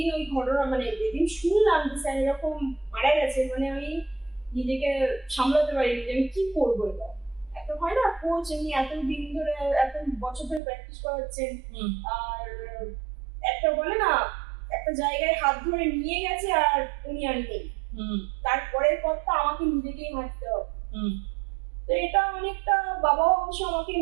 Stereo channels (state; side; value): drops out; left; at 10.6 s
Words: ওই ঘটনা মানে যেদিন শুনলাম যে স্যার এরকম মারা গেছে, মানে আমি নিজেকে সামলাতে পারিনি যে আমি কি করবো। এটা একটা হয় না, কোচ এমনি এতদিন ধরে এত বছর ধরে প্র্যাকটিস করাচ্ছেন, আর একটা বলে না একটা জায়গায় হাত ধরে নিয়ে গেছে আর উনি আর নেই, তারপরের পথটা আমাকে নিজেকেই হাঁটতে হবে। তো এটা অনেকটা, বাবাও অবশ্য আমাকে